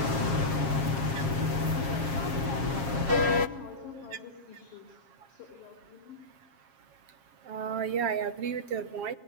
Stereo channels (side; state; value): left; late; 7.4 ms